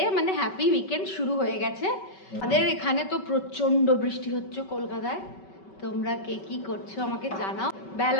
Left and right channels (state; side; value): late; right; 5.2 ms